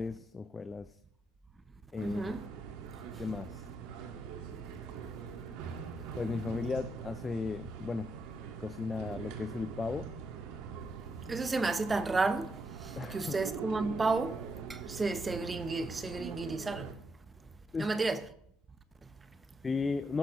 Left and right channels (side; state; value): both; normal; correlation 0.81